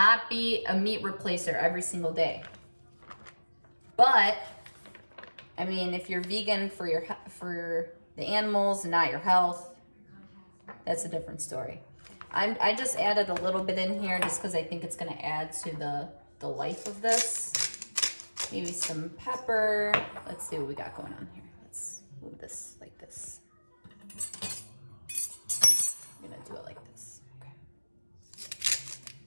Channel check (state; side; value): inverted; both; correlation -1.00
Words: be a meat replacer every single day. But, I mean, if you're vegan for the animals and not your health, that's a different story. I just added a little bit in here just because I think it's gonna add to the life of this. Maybe some pepper. Let's see what we got going on here. Let's move this like this. I'm gonna do it like this. Okay.